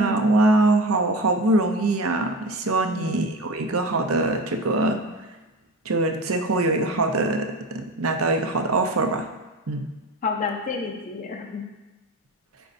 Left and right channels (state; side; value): normal; both; correlation 0.29